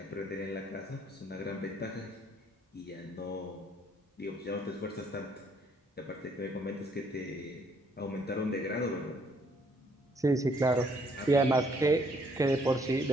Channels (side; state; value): both; normal; correlation 0.66